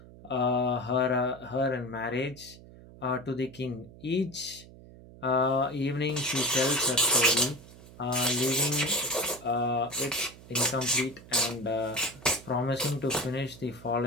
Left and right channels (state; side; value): noise; right; hum, 19 dB below the sound